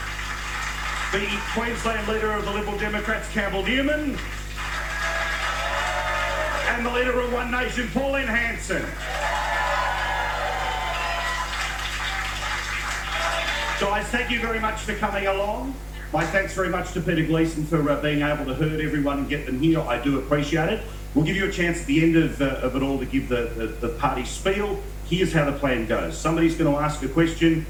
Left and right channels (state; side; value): identical; both; correlation 1.00